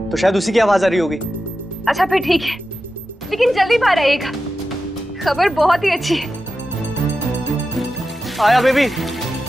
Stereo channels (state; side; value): normal; both; correlation 0.91